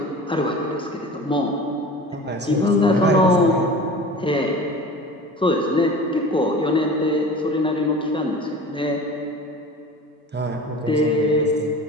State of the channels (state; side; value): normal; both; correlation 0.37